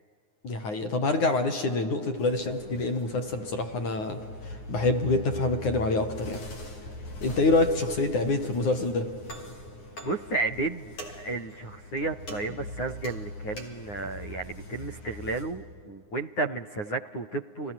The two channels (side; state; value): right; late; 9.7 ms